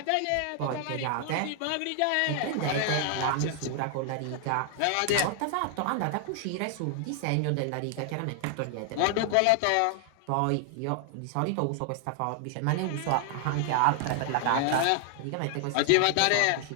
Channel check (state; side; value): different; both; correlation 0.00